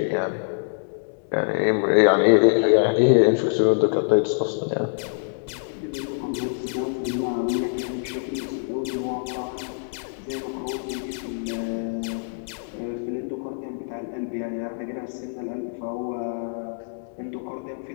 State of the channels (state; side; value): silent; right; digital silence